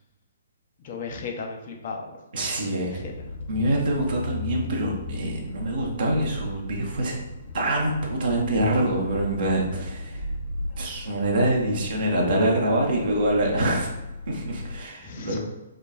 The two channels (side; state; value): both; inverted; correlation -0.62